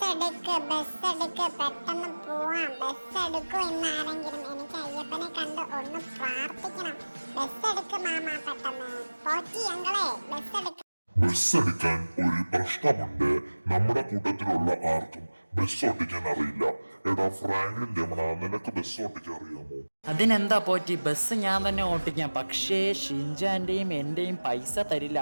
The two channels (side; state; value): both; inverted; correlation -1.00